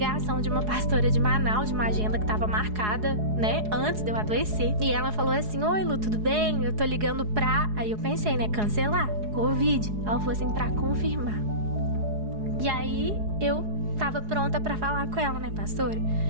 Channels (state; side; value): late; left; 4.8 ms